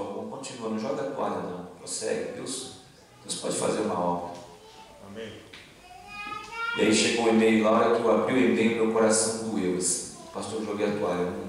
continua, não joga a toalha não, prossegue, Deus pode fazer uma obra. Amém. E aí chegou um e-mail lá, hora que eu abri o e-mail, meu coração doeu assim: pastor, eu joguei a toalha, eu não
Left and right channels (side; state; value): both; identical; correlation 1.00